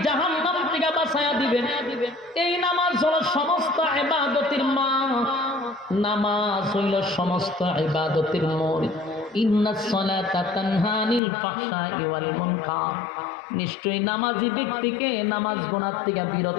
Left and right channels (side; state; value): right; drops out; at 11.2 s